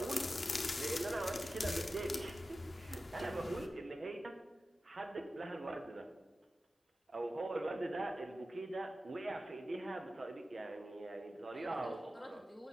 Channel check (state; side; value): normal; both; correlation 0.94